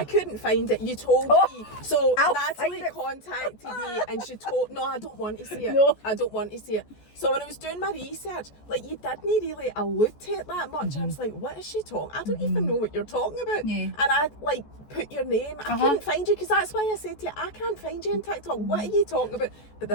couldn't find it. You told me. So Natalie contacted me and she told, no, I don't want to see it. No. I don't want to see it. So when I was doing my research, like, you didn't really allude to it that much. I was like, what is she talking? I don't even know what you're talking about. Yeah. And I like put your name. I couldn't find you because that's why I said to you, I can't find you on TikTok. What are you talking about? But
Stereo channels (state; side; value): late; right; 14 ms